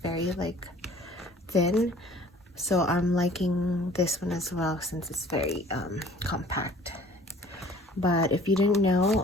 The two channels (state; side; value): normal; both; correlation 0.51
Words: very like thin. So I'm liking this one as well since it's very compact. But if you didn't